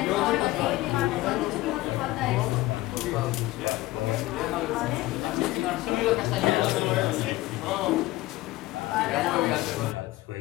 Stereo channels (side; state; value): right; quieter; 18.0 dB